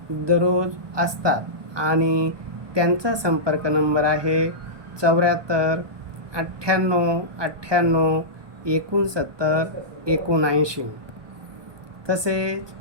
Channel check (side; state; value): left; late; 1.2 ms